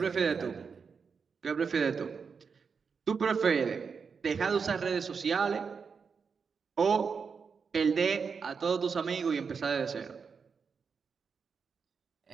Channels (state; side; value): quieter; left; 5.7 dB